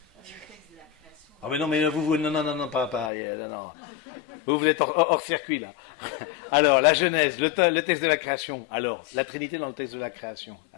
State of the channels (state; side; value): drops out; right; at 3.1 s